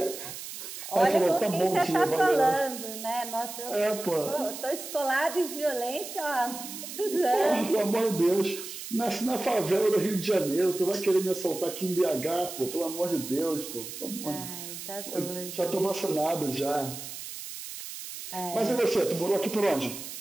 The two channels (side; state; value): right; noise; hiss, 10 dB below the sound